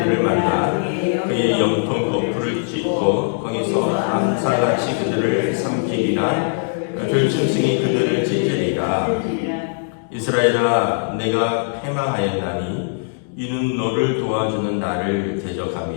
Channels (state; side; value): silent; right; digital silence